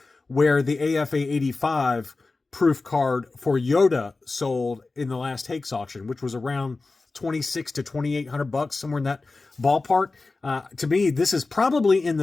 where the AFA 85 proof card for Yoda sold in the last Hakes auction, which was around $2,600 to $2,800, somewhere in that ballpark. To me, this is probably in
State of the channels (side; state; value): right; quieter; 3.6 dB